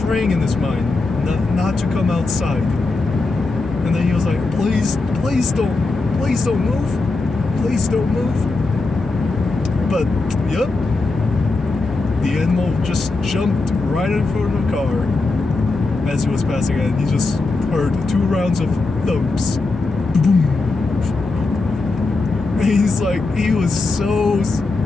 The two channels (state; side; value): quieter; right; 3.6 dB